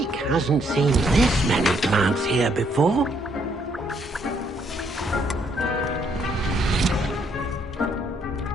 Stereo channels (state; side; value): normal; both; correlation 0.70